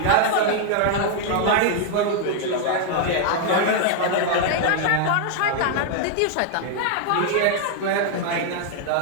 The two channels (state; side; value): different; both; correlation 0.00